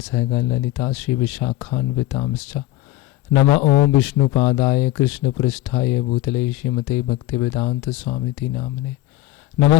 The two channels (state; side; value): quieter; right; 15.3 dB